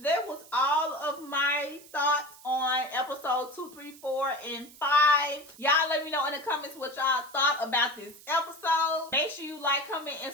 That was all of my thoughts on episode 2, 3, 4, and 5. Y'all let me know in the comments what y'all thought about this episode. Make sure you like, comment, and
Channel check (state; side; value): noise; right; hiss, 21 dB below the sound